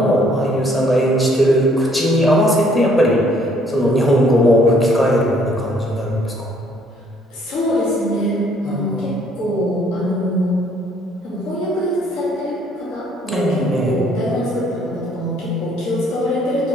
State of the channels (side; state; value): both; normal; correlation 0.63